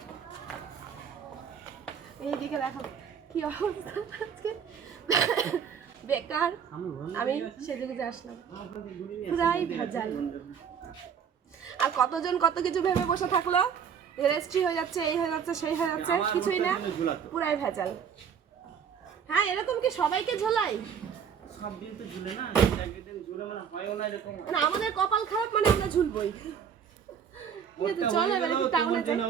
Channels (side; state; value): left; quieter; 7.5 dB